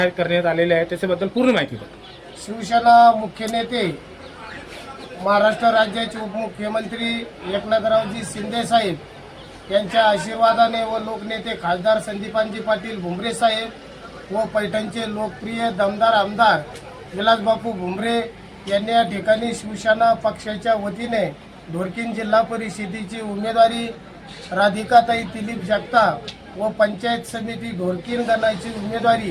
करण्यात आलेले आहेत त्याच्याबद्दल पूर्ण माहिती द्या. शिवसेना मुख्य नेते महाराष्ट्र राज्याचे उपमुख्यमंत्री एकनाथरावजी शिंदे साहेब यांच्या आशीर्वादाने व लोकनेते खासदार संदीपानजी पाटील भुमरे साहेब व पैठणचे लोकप्रिय दमदार आमदार विलासबापू भुमरे यांनी या ठिकाणी शिवसेना पक्षाच्या वतीने ढोरकीन जिल्हा परिषदेची उमेदवारी राधिकाताई दिलीप जगताप व पंचायत समिती ढोरकीन गणाची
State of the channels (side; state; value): both; identical; correlation 1.00